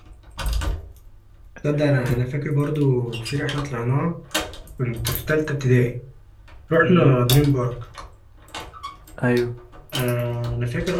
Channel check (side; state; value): both; identical; correlation 1.00